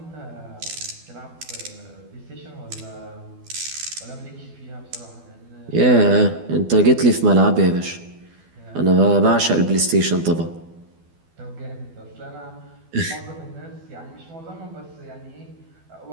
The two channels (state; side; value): late; left; 12 ms